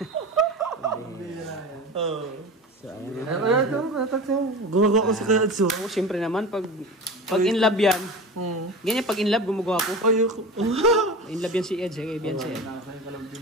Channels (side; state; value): both; normal; correlation 0.30